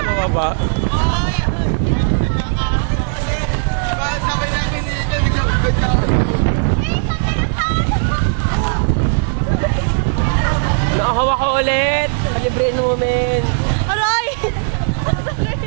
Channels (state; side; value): silent; left; digital silence